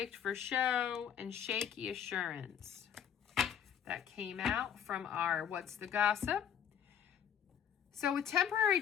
for show, and shaky assurance. That came out from our What's the Gossip? So with temporary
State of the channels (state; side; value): quieter; right; 8.8 dB